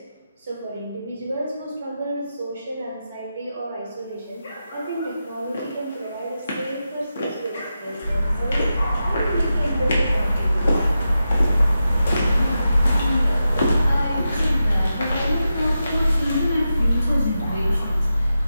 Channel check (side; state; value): both; inverted; correlation -0.89